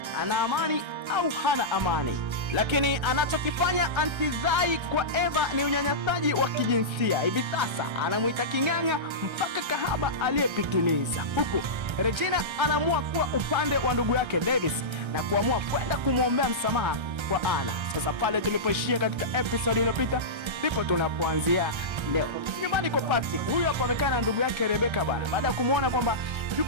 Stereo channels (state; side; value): late; left; 1.3 ms